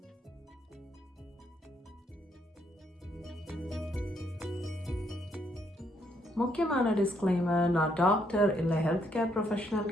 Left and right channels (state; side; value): normal; both; correlation 0.73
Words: முக்கியமான டிஸ்க்ளைமர், நான் டாக்டர் இல்லை ஹெல்த் கேர் ப்ரொஃபஷனல்